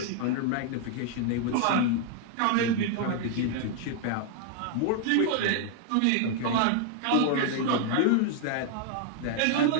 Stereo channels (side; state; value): both; different; correlation 0.00